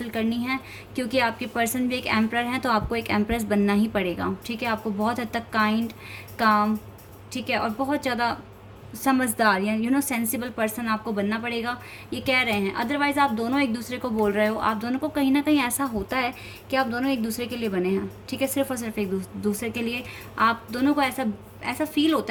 करनी है, क्योंकि आपके पर्सन भी एक एम्परर हैं, तो आपको एक एम्प्रेस बनना ही पड़ेगा। ठीक है, आपको बहुत हद तक काइंड, काम, ठीक है, और बहुत ज़्यादा समझदार या सेंसिबल पर्सन आपको बनना पड़ेगा, ये कह रहे हैं। अदरवाइज़ आप दोनों एक दूसरे को बोल रहे हो, आप दोनों को कहीं ना कहीं ऐसा होता है कि आप दोनों एक दूसरे के लिए बने हैं। ठीक है, सिर्फ और सिर्फ एक दूसरे के लिए। आप दोनों को ऐसा फील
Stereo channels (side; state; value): both; identical; correlation 1.00